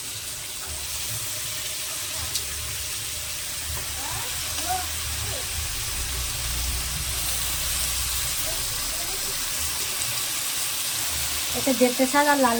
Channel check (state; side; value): identical; both; correlation 1.00